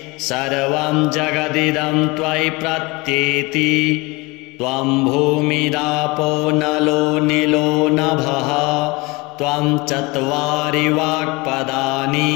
सर्वं जगदिदं त्वयि प्रत्येति त्वं भूमिरापो नलो निलो नभः त्वं चत्वारि वाक्पदानि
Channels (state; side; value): quieter; right; 24.9 dB